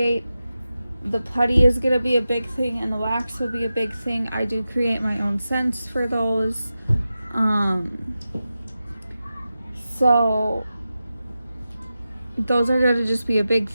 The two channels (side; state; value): both; inverted; correlation -0.92